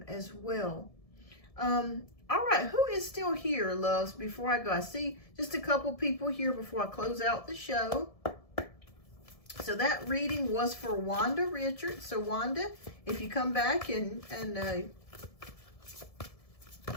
as well. All right, who is still here, loves, before I go? I see just a couple people here before I close out the show. So that reading was for Wanda Richards. So Wanda, if you come back and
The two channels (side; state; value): right; late; 1.7 ms